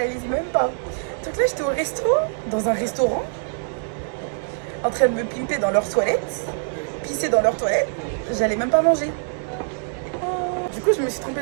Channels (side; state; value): left; silent; digital silence